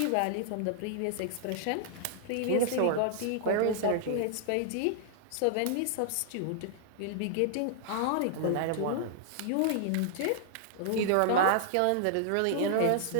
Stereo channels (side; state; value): both; different; correlation -0.01